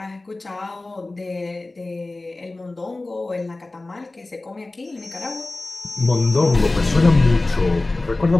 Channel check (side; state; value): right; quieter; 3.1 dB